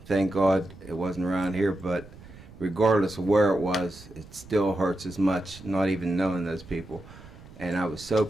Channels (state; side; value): noise; right; rumble, 19 dB below the sound